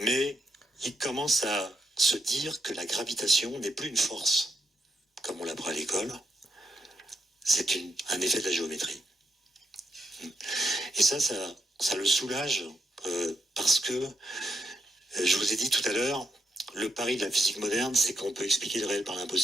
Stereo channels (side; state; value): both; normal; correlation 0.82